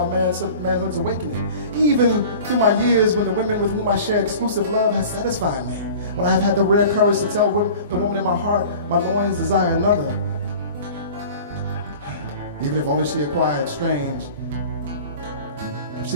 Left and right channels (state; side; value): inverted; both; correlation -0.41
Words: manhood's awakening. Even through my years when the women with whom I share exclusive love has satisfied me. When I have had the rare courage to tell the woman in my heart, my loins desire another. Even if only she acquired strange. If